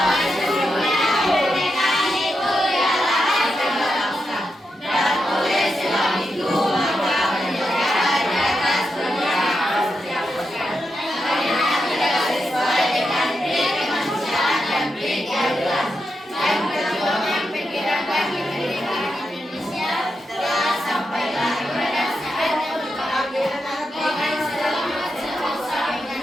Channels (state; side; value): normal; both; correlation 0.86